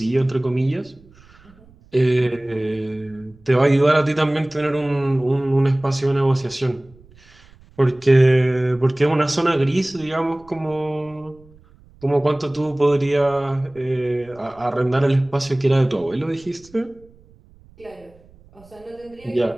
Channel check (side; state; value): right; noise; rumble, 27 dB below the sound